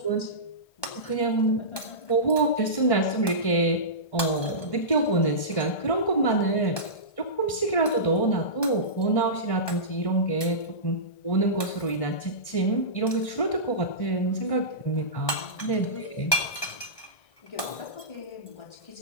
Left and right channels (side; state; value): right; late; 1.2 ms